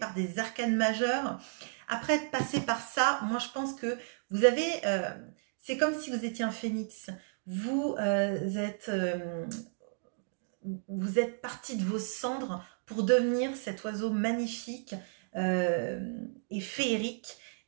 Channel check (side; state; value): left; silent; digital silence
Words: des arcanes majeures. Après être passé par ça, moi je pense que vous avez... c'est comme si vous étiez un phénix. Vous êtes parti de vos cendres pour devenir cet oiseau magnifique et féerique.